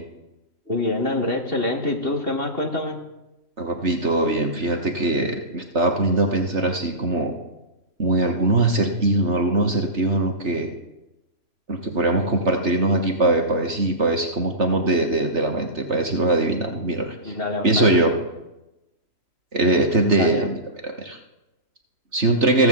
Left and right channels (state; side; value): late; left; 3.3 ms